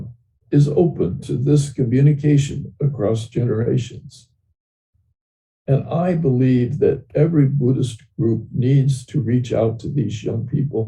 is open to this communication across generations. And I believe that every Buddhist group needs to reach out to these young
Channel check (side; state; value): both; identical; correlation 1.00